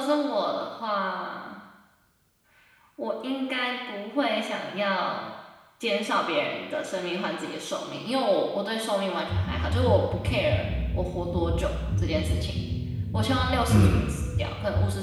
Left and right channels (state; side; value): identical; both; correlation 1.00